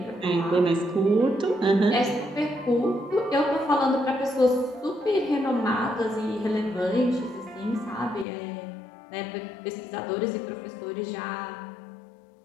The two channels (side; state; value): right; drops out; at 8.2 s